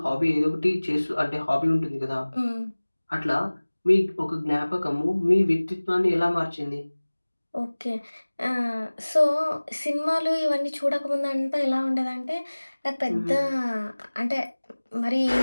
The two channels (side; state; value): both; inverted; correlation -1.00